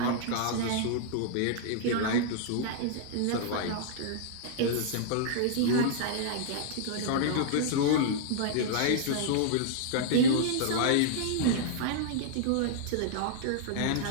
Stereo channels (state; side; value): different; both; correlation -0.01